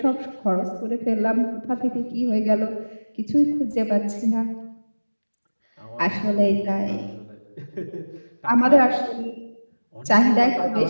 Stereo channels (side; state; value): both; inverted; correlation -1.00